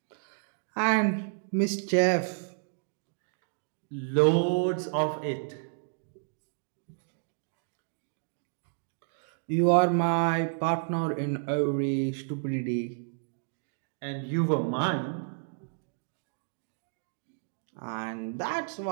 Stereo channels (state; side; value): silent; left; digital silence